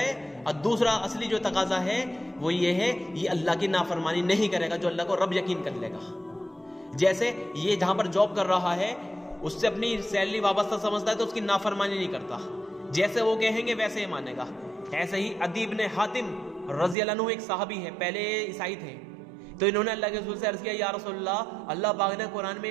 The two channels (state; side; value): drops out; left; at 16.9 s